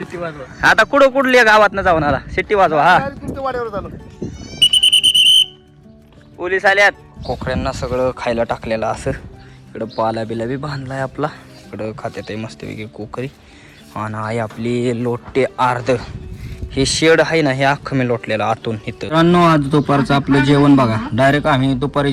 वाजवा आता कुठल्या गावात न जाऊन आला? सिटी वाजवा. हा तुमच्या वाड्यावर झालं. पोलीस आल्यात. कोकड्यांना सगळं खायला टाकलेलं असं. इकडं पाला बिला बी बांधलाय आपला. इकडं खात्यात मस्तपैकी कोकरी आणि आहे आपली लोटे अर्ध. हे शेड आहे ना, हे अख्खं मी लोटलेलं आतून इथं. मित्रांनो, आज दुपारचं आपलं जेवण बघा. डायरेक्ट आम्ही दुपारी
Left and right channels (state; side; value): identical; both; correlation 1.00